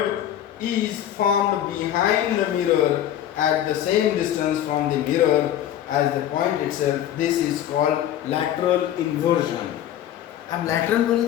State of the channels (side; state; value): right; quieter; 11.3 dB